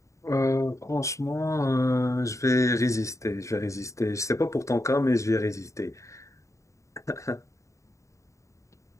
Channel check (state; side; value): late; right; 0.15 ms